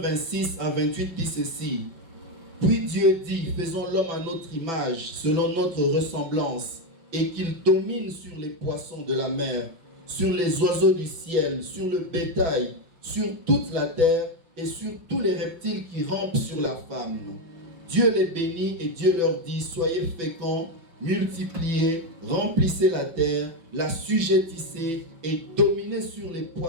à 28 dit ceci. Puis Dieu dit, faisons l'homme à notre image, selon notre ressemblance, et qu'il domine sur les poissons de la mer, sur les oiseaux du ciel, sur le bétail, sur toute la terre et sur tous les reptiles qui rampent sur la femme. Dieu les bénit et Dieu leur dit, soyez féconds, multipliez, remplissez la terre, la sujettissez et dominez sur les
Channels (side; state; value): left; late; 6.0 ms